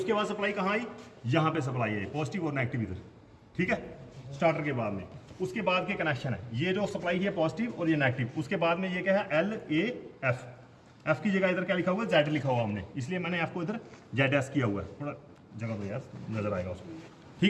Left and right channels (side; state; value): both; identical; correlation 1.00